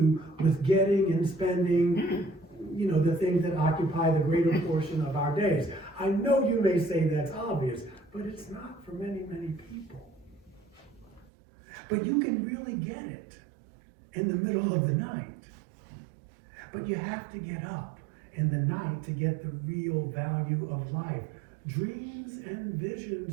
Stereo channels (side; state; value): left; drops out; at 11.3 s